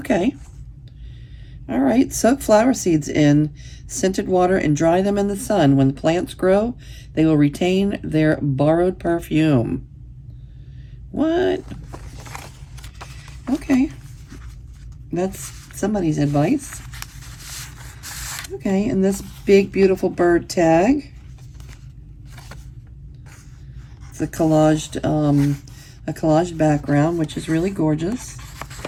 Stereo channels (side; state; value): both; identical; correlation 1.00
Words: All right, soak flower seeds in scented water and dry them in the sun. When the plants grow, they will retain their borrowed perfume. What? Okay. That's somebody's advice. Okay, and this big, beautiful bird tag. It's a collaged background, which is really gorgeous.